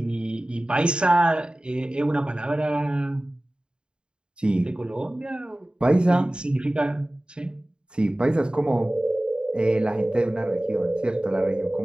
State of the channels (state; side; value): late; left; 0.051 ms